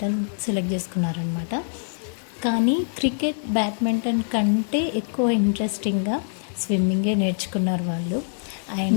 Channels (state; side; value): silent; right; 55 dB below the other